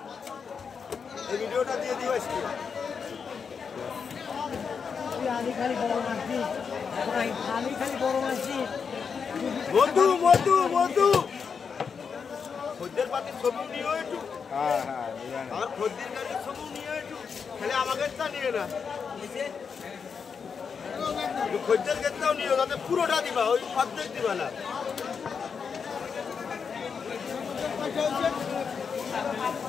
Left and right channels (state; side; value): quieter; right; 6.1 dB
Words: এই ভিডিওটা দিয়ে দিও আজকে খালি বড় মাছি মধু মধু মধু খদ্দের পাতি ছবি নিও একটু আমার খদ্দের গাড়ির ছবি নিও একটু খালি আমাকে তা নিয়ে না খদ্দের ক্ষেত্রেও নিও তাতে পুরোটা দিবা ওই অর্ধেক দিবা না